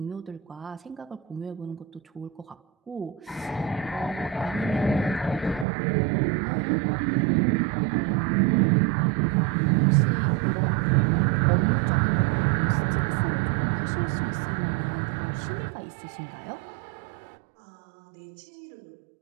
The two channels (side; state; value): left; drops out; at 5.7 s